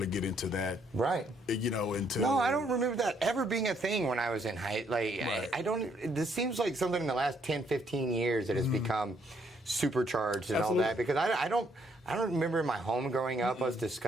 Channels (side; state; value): both; normal; correlation 0.70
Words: get into that. Right. Until. No, I don't remember that ever being a thing when I was in high. Like, right. I don't. This seems like something in the last 10, 15 years that has become supercharged and Absolutely. all that. Because I don't remember in my home growing up us